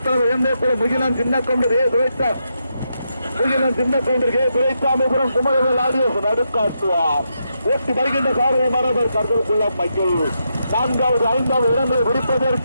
எந்தேக்குளம் முகிலன் சின்னக்கவுண்டர் துரைசாமிபுரம் குமரவேல் ஆடியோஸ் நடுக்காட்டுவார் ஓட்டி வருகின்ற சாரதி மரபர் கருதலுக்குள்ள மைக்கேல் நான்காவது ஐந்தாவது இடங்களை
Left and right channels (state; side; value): inverted; both; correlation -0.83